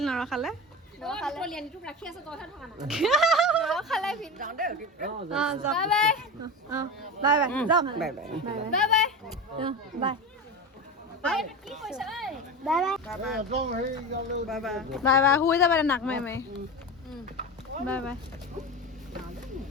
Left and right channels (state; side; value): normal; both; correlation 0.25